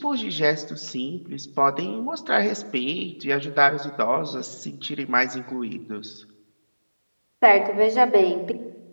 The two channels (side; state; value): both; inverted; correlation -1.00